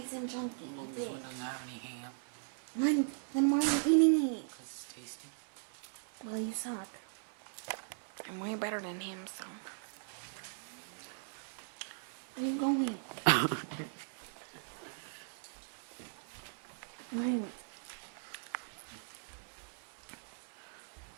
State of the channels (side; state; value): left; silent; digital silence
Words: and chunky. Well, You this did. one doesn't have any ham. Then why are you eating it? Because it's tasty. Well, you suck. I'm way better than him, so. Where are you going? Wait.